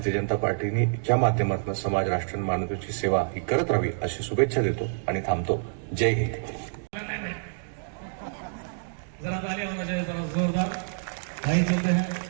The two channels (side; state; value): left; silent; digital silence